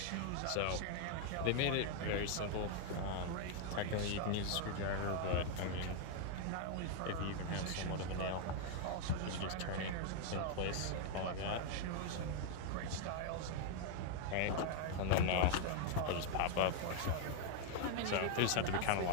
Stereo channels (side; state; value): both; different; correlation 0.00